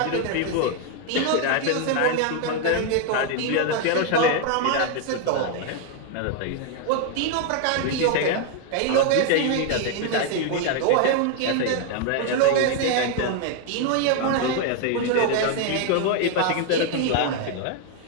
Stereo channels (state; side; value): different; both; correlation 0.00